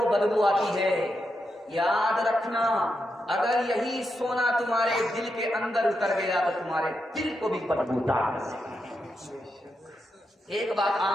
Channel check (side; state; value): both; normal; correlation 0.85